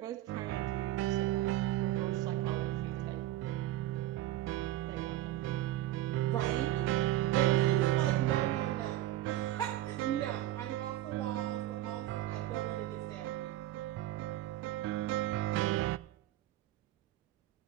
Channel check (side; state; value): left; quieter; 14.7 dB